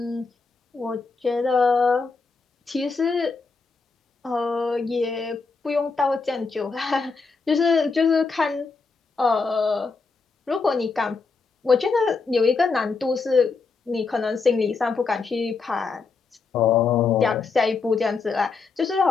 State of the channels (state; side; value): quieter; right; 4.5 dB